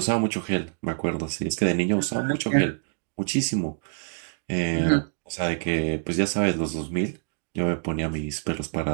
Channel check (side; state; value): left; silent; digital silence